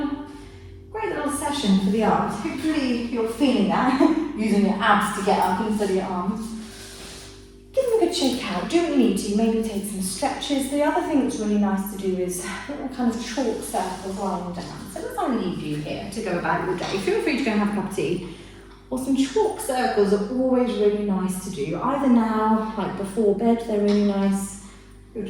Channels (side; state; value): both; identical; correlation 1.00